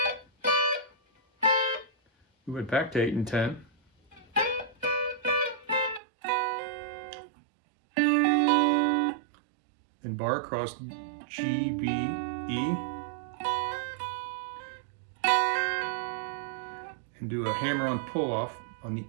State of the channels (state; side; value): drops out; left; at 6.0 s